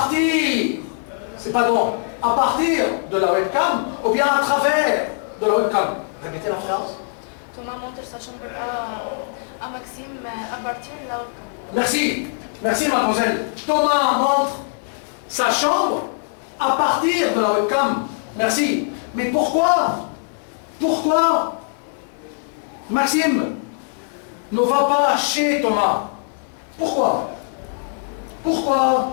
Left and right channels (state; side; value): silent; right; 65 dB below the other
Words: c'est pas bon, à partir de la webcam ou bien à travers de la webcam. Répétez la phrase. Thomas montre sa chambre à Maxime à partir de la webcam. Merci. Merci mademoiselle. Thomas montre sa chambre à partir de la webcam. Merci. Mais pourquoi? Pourquoi Maxime ne va pas chez Thomas? Pourquoi? Pourquoi?